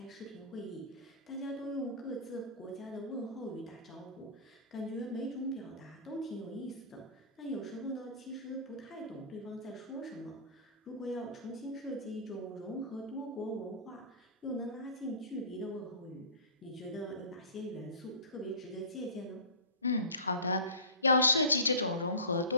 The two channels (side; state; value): both; inverted; correlation -0.33